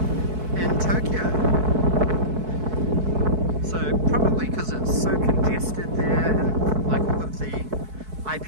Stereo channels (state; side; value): late; left; 4.6 ms